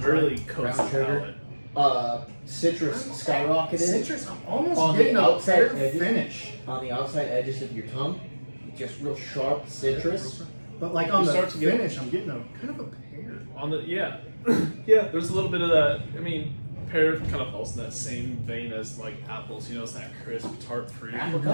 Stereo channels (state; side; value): inverted; both; correlation -1.00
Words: really dry. coats the Brown sugar. palate. Citrus skyrocketed Citrus. I'm almost On the getting a outside fair edges. finish, on the outside edges of your tongue. Just real sharp citrus. but like on You the start to get- finish, I'm getting a kind of a pear. On the yeah, there's a little bit of that. I mean, pear kind of falls in that same vein as like apples. It's that crisp, tart fruit.